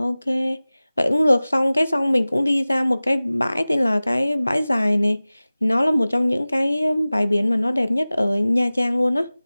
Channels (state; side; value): inverted; both; correlation -0.98